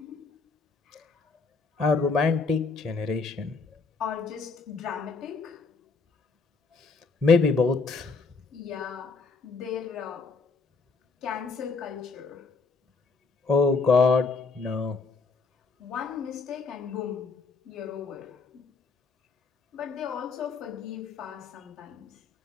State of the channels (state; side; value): quieter; right; 4.6 dB